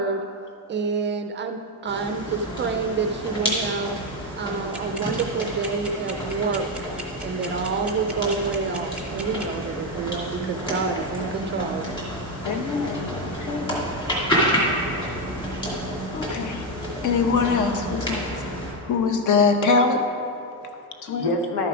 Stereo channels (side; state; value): both; normal; correlation 0.06